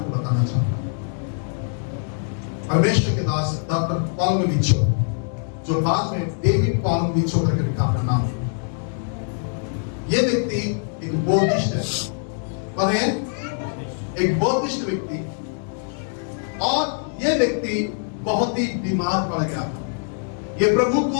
बताना चाहूंगा। परमेश्वर के दास डॉक्टर पॉलमविचो, जो बाद में डेविड पॉलमविचो करके लिखा अपना नाम। ये व्यक्ति एक बौद्धिस्ट है, पर एक बौद्धिस्ट व्यक्ति, और ये व्यक्ति बहुत ही बीमार पड़ गया था। ये प्रभु को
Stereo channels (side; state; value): right; silent; 58 dB below the other